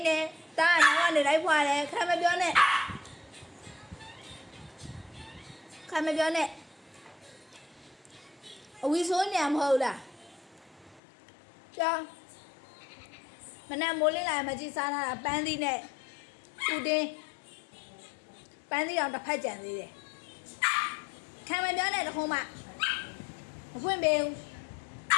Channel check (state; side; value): drops out; right; at 11.0 s